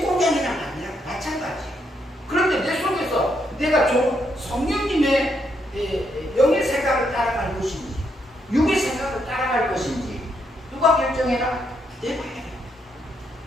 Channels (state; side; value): normal; both; correlation 0.77